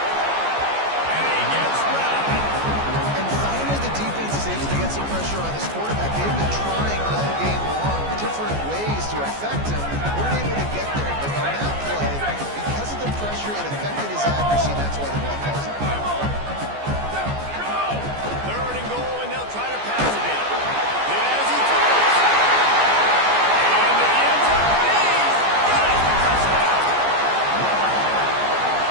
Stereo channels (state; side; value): late; left; 14 ms